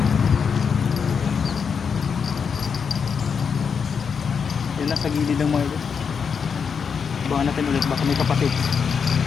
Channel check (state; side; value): quieter; right; 6.3 dB